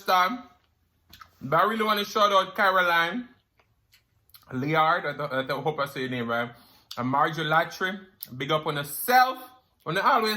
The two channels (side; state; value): both; identical; correlation 1.00